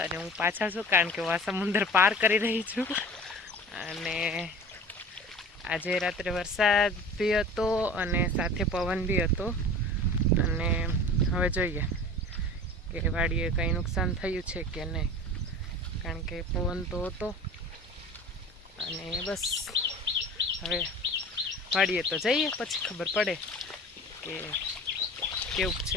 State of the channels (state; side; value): normal; both; correlation 0.39